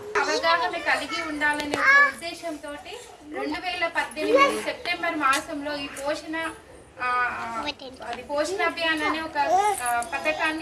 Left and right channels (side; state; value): both; identical; correlation 1.00